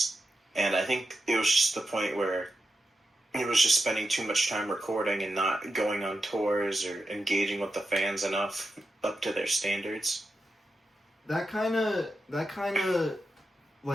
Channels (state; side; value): normal; both; correlation 0.89